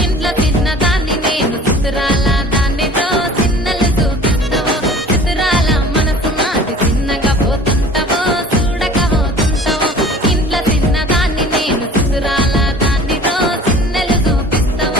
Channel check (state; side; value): normal; both; correlation 0.45